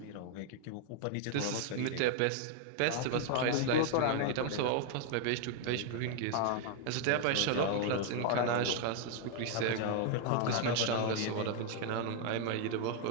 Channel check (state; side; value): different; both; correlation 0.00